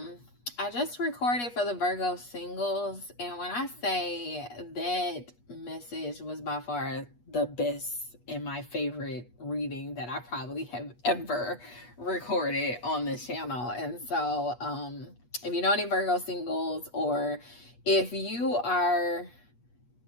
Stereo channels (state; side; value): late; right; 8.3 ms